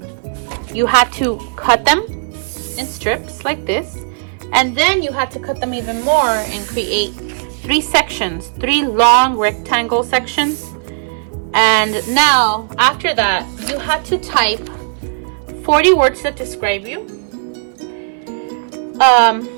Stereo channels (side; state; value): left; silent; 63 dB below the other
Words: had to cut them in strips like this, and then you had to cut them even more and create 3 sections, 3 long rectangle sections. And now after that, you had to type 40 words that describe you.